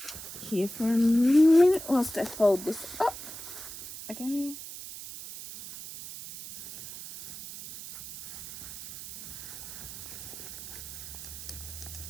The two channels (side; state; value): right; noise; hiss, 11 dB below the sound